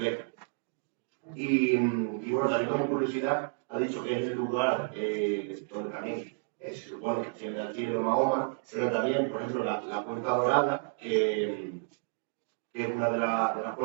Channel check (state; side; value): silent; left; digital silence